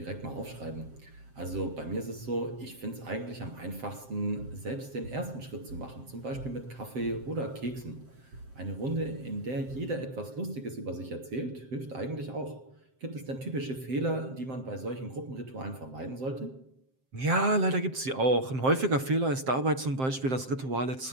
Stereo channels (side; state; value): left; late; 7.6 ms